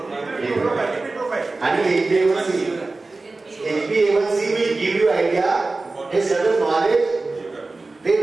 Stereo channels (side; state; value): left; quieter; 3.4 dB